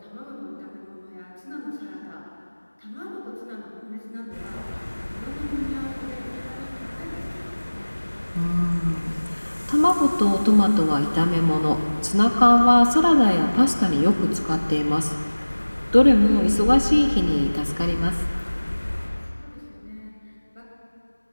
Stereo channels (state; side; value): inverted; both; correlation -1.00